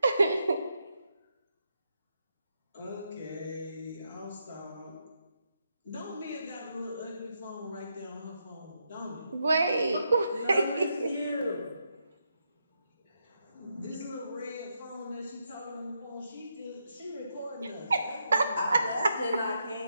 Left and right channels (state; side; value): inverted; both; correlation -0.81